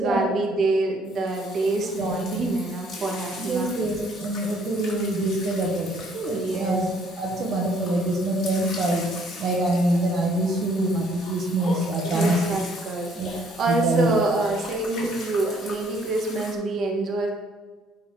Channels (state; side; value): normal; both; correlation 0.63